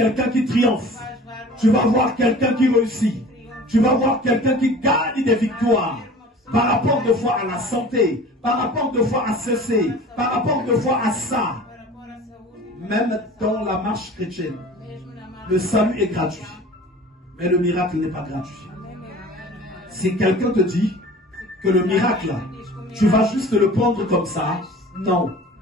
qui triomphe. Tu vas voir quelqu'un qui réussit. Tu vas voir quelqu'un qui gagne des victoires. Par rapport de fois à la santé, par rapport de fois à ceci, par rapport de fois à ça. Même dans la marche chrétienne, le salut est gratuit. Mais le miracle n'est pas gratuit. Si quelqu'un te dit que le miracle, tu vas juste le prendre comme ça, non.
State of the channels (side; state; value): both; normal; correlation 0.43